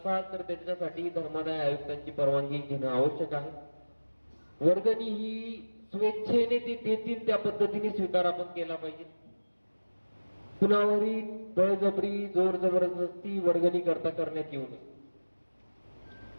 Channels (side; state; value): both; inverted; correlation -1.00